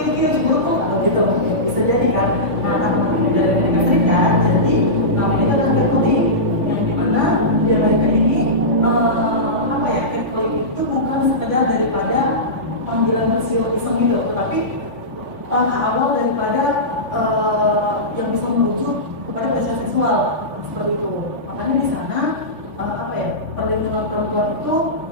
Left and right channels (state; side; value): late; left; 3.4 ms